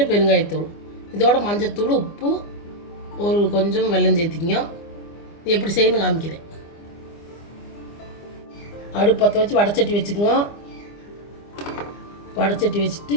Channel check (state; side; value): late; right; 25 ms